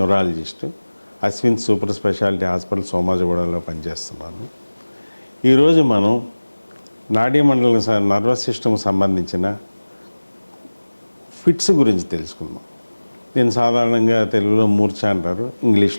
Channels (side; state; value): both; inverted; correlation -1.00